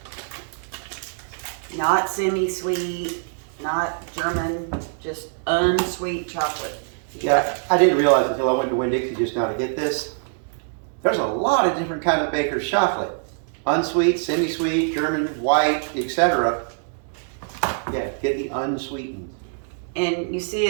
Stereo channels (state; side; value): silent; left; digital silence